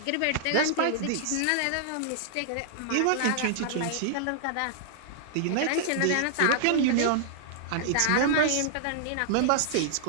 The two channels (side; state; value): both; different; correlation -0.01